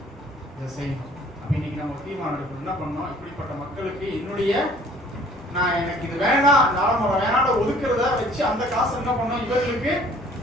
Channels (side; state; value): both; normal; correlation 0.55